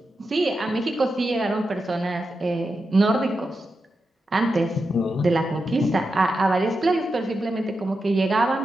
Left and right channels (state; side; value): normal; both; correlation 0.88